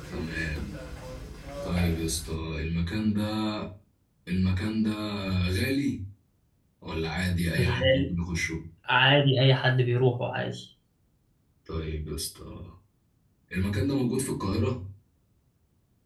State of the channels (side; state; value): both; identical; correlation 1.00